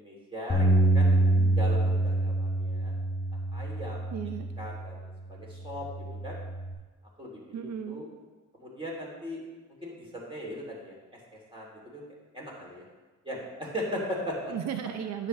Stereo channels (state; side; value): normal; both; correlation 0.60